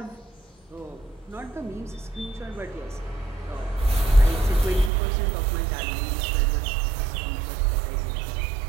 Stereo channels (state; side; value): drops out; left; at 4.9 s